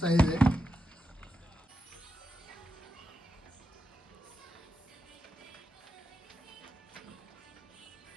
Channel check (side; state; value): both; normal; correlation 0.87